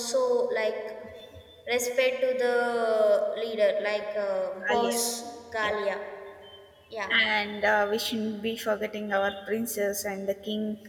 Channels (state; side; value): identical; both; correlation 1.00